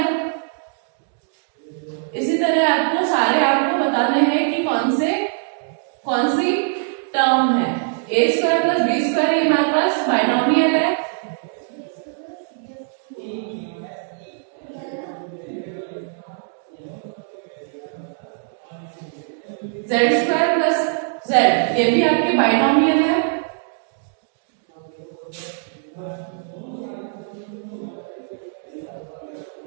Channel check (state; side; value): silent; left; digital silence